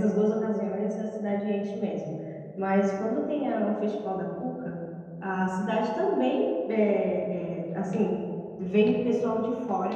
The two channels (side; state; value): both; identical; correlation 1.00